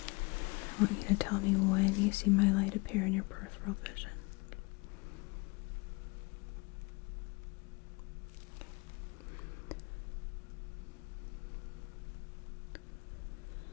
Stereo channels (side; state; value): right; quieter; 27.9 dB